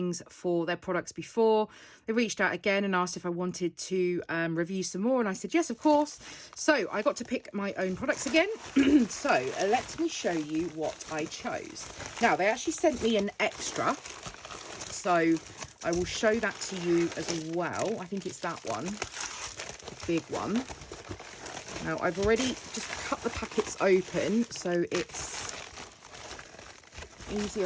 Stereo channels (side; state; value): both; identical; correlation 1.00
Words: for their products before. They reached out again and asked if I wanted to review some more, and I said yes, of course. So I got to pick my own products again. So let me show you what I chose. Now, they actually sent me an extra, so I will show that to you as well. I think it's that one, the big one. Now, I've already just cut the packets open, so it's